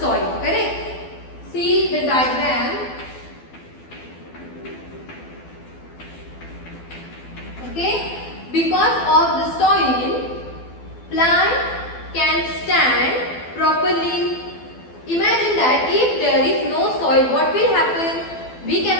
Correct? See the diagram. Okay? Because of the soil, plant can stand properly. Imagine that if there is no soil, what will happen? We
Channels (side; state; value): right; late; 12 ms